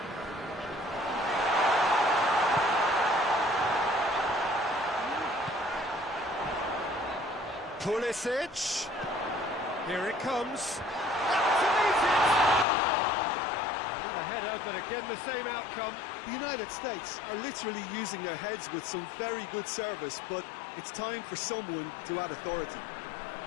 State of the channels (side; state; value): right; drops out; at 12.7 s